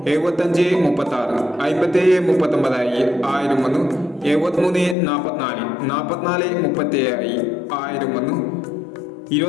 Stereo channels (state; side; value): drops out; right; at 5.0 s